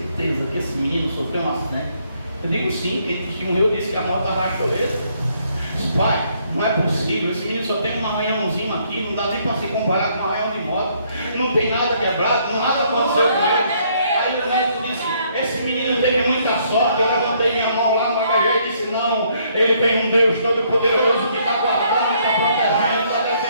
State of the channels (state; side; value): inverted; both; correlation -0.68